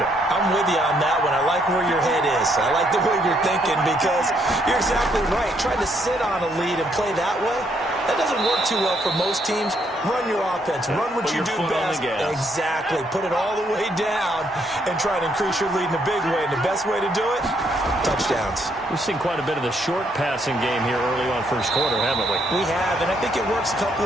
I'm with you on that one. I like where your head is. I like the way you're thinking because you're exactly right. Trying to sit on a lead and play that way, that doesn't work too well for most teams. Run your offense. Run what you do best. Exactly. Put it all the way down and try to increase your lead in a big way. And the best way to do it, touchdowns. We've seen quite a bit of the short passing game here early on first quarter, haven't we? We have, and I think it works a couple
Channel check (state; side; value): normal; both; correlation 0.72